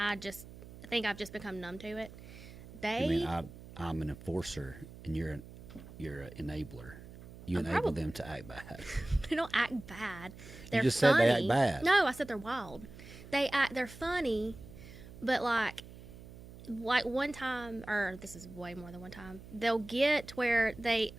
think I've just become numb to it. I mean, I'm an enforcer, and you're an enabler. You enable them to act bad. They don't act bad. They're You just funny. said they act bad. No, I said they're wild. They're funny, but like one time, or this is way more than one time, they'll get where they,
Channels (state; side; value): noise; right; hum, 16 dB below the sound